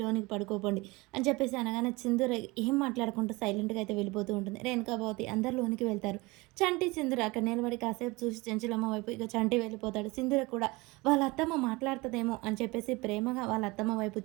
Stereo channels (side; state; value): left; quieter; 23.5 dB